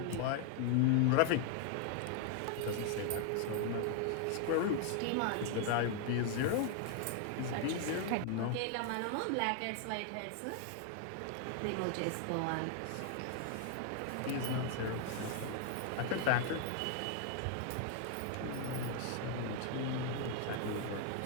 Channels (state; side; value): different; both; correlation 0.00